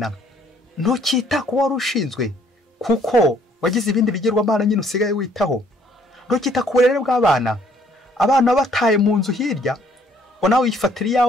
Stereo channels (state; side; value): normal; both; correlation 0.63